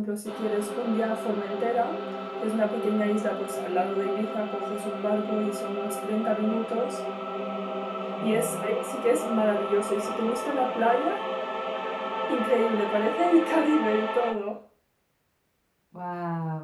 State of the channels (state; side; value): identical; both; correlation 1.00